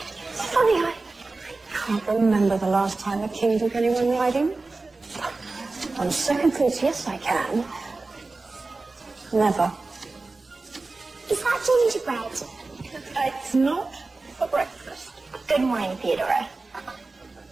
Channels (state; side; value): quieter; left; 3.5 dB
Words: I can't remember the last time a king took anyone riding. On second thoughts, yes, I can. Never. Is that gingerbread? It's not for breakfast. Good morning, Theodora.